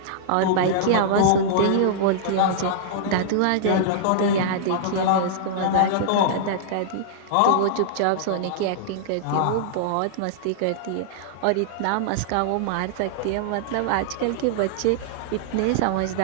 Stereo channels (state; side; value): different; both; correlation -0.02